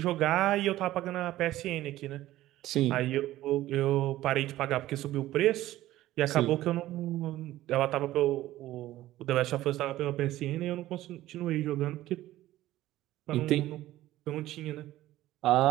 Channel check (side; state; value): left; quieter; 15.2 dB